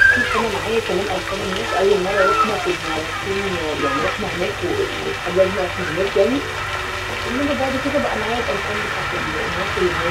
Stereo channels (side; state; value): both; identical; correlation 1.00